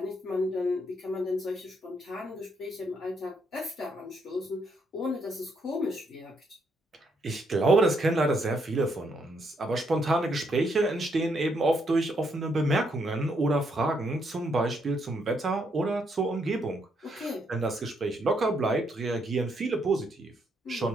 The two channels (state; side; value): normal; both; correlation 0.75